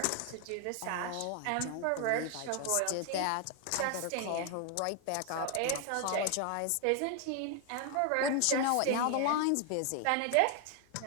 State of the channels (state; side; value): different; both; correlation 0.00